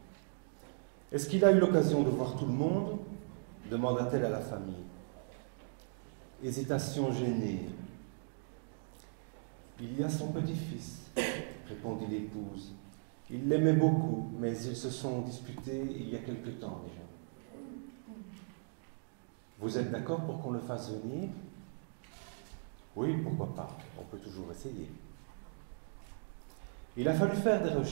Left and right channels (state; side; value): silent; left; digital silence